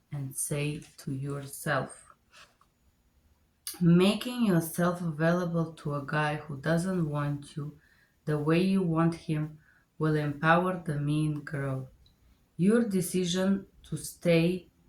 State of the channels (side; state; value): both; identical; correlation 1.00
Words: and say to yourself. Making yourself available to a guy who doesn't want you the way you want him will empower the mean girl. Your decision to stay